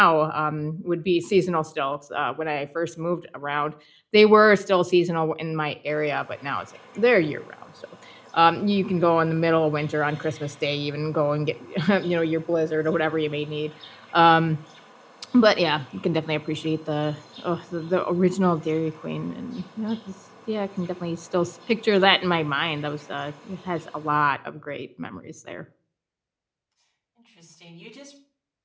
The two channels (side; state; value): both; identical; correlation 1.00